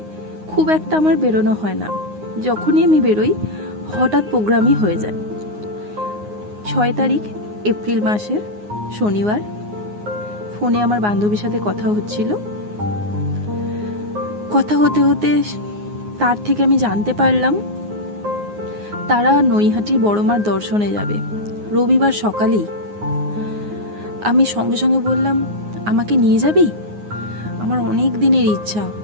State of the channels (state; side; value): late; left; 9.6 ms